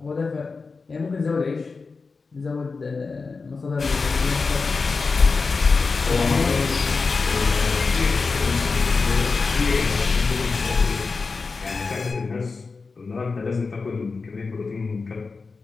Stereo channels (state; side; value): quieter; right; 4.4 dB